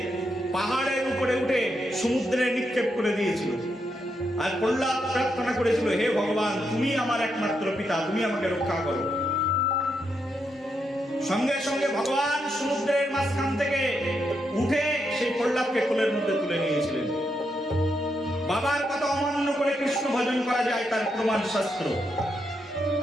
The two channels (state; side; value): normal; both; correlation 0.81